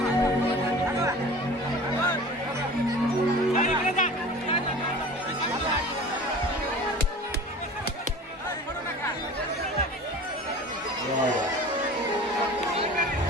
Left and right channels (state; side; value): normal; both; correlation 0.40